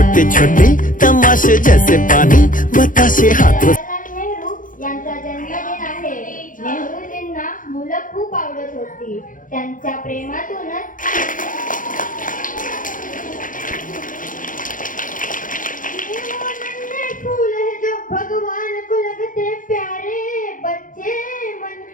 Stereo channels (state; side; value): late; right; 0.39 ms